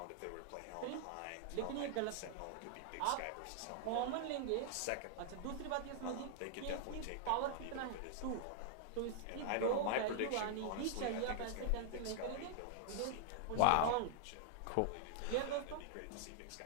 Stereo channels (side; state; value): both; different; correlation -0.01